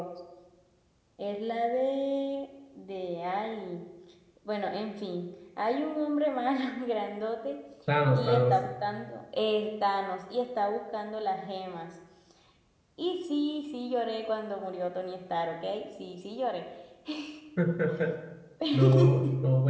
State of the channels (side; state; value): both; identical; correlation 1.00